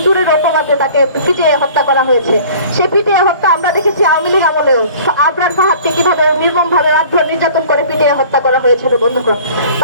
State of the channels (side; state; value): both; inverted; correlation -0.47